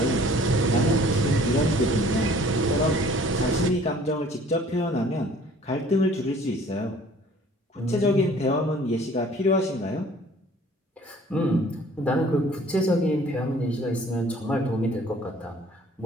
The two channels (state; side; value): normal; both; correlation 0.53